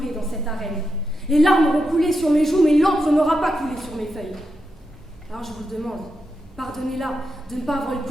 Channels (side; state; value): both; normal; correlation 0.86